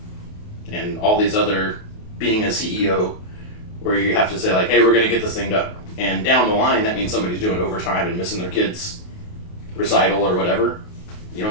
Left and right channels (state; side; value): late; right; 28 ms